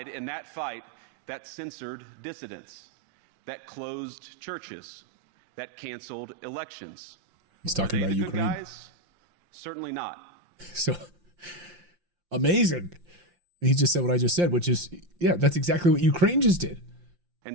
in that fight that censored dissidents, that closed churches, that canceled elections. He's talking about Ukraine. Guys? Certainly not. So amazing. He just said what I just said, which is, yeah, that's exactly what Ukraine just did.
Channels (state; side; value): late; left; 5.7 ms